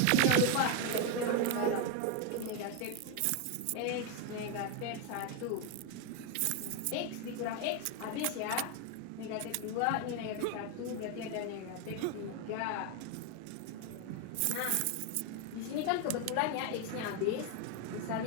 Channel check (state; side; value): different; both; correlation 0.01